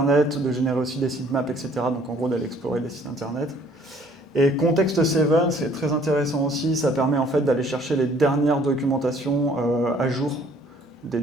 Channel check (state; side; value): normal; both; correlation 0.58